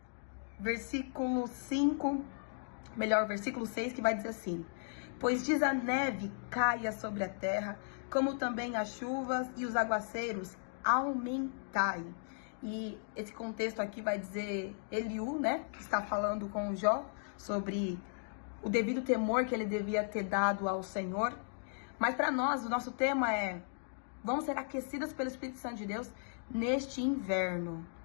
versículo 5, versículo 6, que vai dizer assim: Pois diz a neve caia sobre a terra, como também as chuvas e os aguaceiros aumentai. E esse contexto aqui vai dizer Eliú, né, que está falando com Jó sobre o devido temor que ele devia ter dado ao Senhor. Mas para nós, o nosso tema é: vamos ser aquecidas pelo Espírito Santo de Deus neste inverno.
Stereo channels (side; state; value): right; silent; digital silence